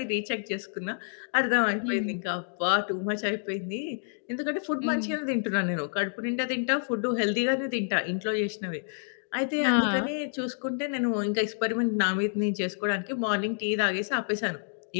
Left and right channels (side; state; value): right; silent; digital silence